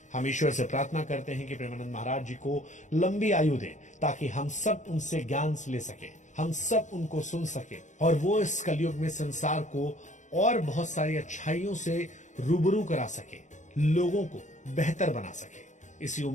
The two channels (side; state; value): right; late; 0.35 ms